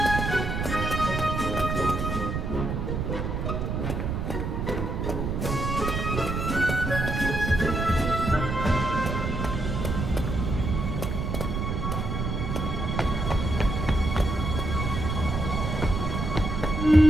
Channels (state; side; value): noise; right; rumble, 2 dB below the sound